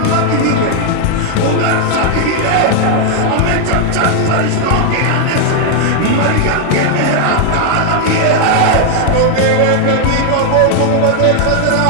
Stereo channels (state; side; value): different; both; correlation 0.00